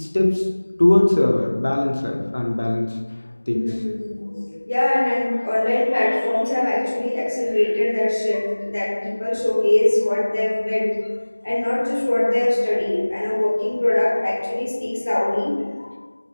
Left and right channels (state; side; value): inverted; both; correlation -1.00